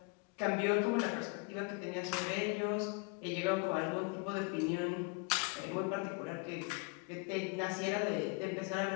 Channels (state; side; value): quieter; right; 31.5 dB